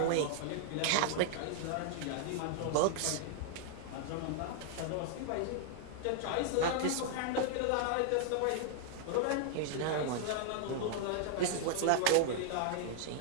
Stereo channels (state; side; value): different; both; correlation -0.01